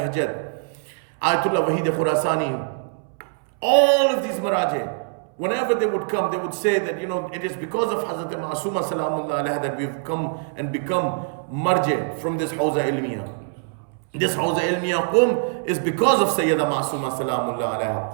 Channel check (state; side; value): silent; left; 63 dB below the other